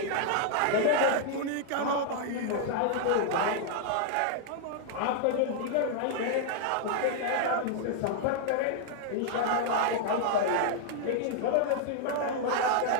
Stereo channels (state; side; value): different; both; correlation 0.00